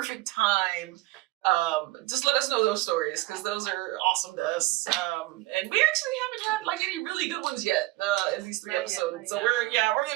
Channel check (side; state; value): left; quieter; 19.7 dB